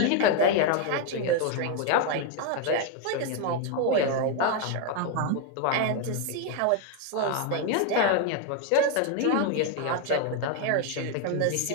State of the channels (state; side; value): different; both; correlation 0.01